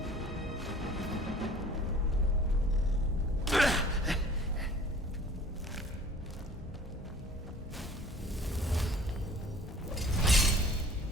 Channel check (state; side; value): normal; both; correlation 0.49